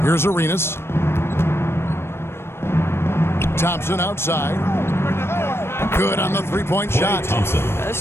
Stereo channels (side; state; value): right; late; 0.12 ms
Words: Here's Arenas. Thompson outside. Good on the three-point shot.